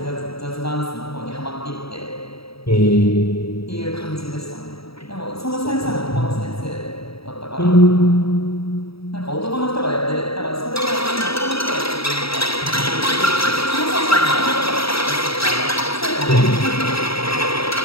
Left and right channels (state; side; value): late; right; 0.76 ms